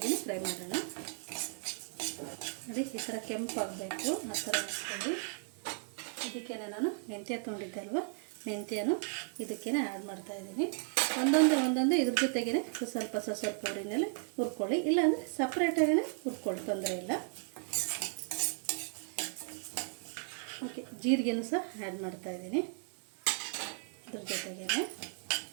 ಫ್ರೈ ಮಾಡೋಣ. ನೋಡಿ, ಈ ಥರ ಕೆಂಪಾಗಬೇಕು, ಆ ಥರ ಹಾಕ್ಕೊಳ್ಳಿ. ಇದಕ್ಕೆ ನಾನು ಮೆಂತ್ಯ ತೊಗೊಂಡಿದ್ದೆ ಅಲ್ವ, ಮೆಂತ್ಯನೂ ಇದಕ್ಕೇ ಆ್ಯಡ್ ಮಾಡ್ತಾಯಿದ್ದೀನಿ. ಒಂದೊಂದು ಇದ್ರ ಜೊತೆಗೇ ಸ್ವಲ್ಪ ಊರಿನಲ್ಲಿ ಹುರ್ಕೊಳ್ಳಿ, ಇಲ್ಲಾಂದರೆ ಸಪ್ರೇಟಾಗೇ ಹುರ್ಕೊಳ್ಳಿ, ತೊಂದರೆ ಇಲ್ಲ. ಓಕೆ, ಜೀರಿಗೆನೂ ಸಹ ಆ್ಯಡ್ ಮಾಡ್ತಾಯಿದ್ದೀನಿ ಇದ್ರ ಜೊತೆಗೇ.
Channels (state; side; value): silent; left; 54 dB below the other